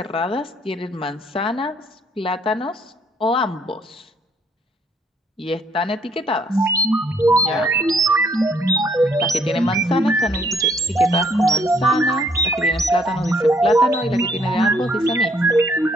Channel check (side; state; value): both; normal; correlation 0.66